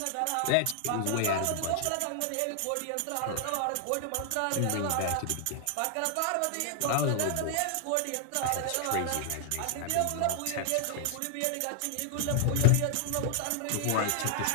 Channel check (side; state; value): both; different; correlation 0.00